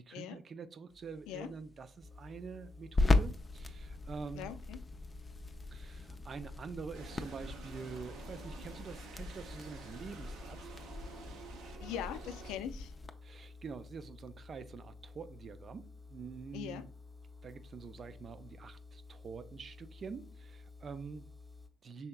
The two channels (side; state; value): both; normal; correlation 0.82